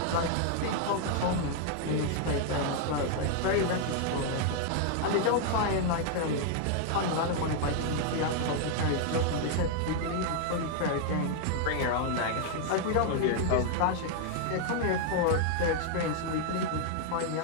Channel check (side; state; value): both; different; correlation 0.00